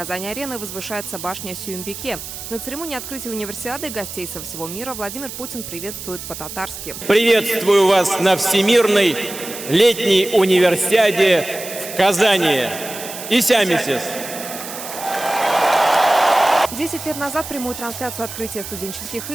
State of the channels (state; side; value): noise; right; hiss, 10 dB below the sound